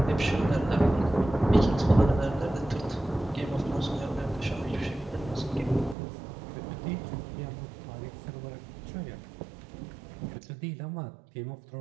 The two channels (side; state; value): left; drops out; at 6.0 s